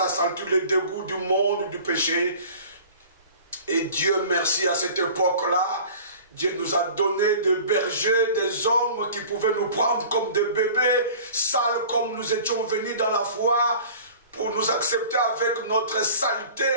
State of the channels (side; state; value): both; inverted; correlation -0.44